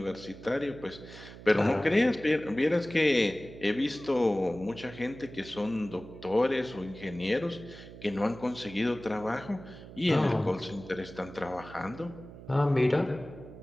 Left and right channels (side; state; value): right; noise; hum, 16 dB below the sound